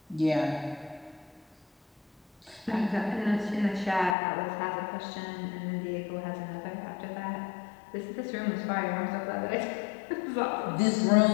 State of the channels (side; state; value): right; drops out; at 4.2 s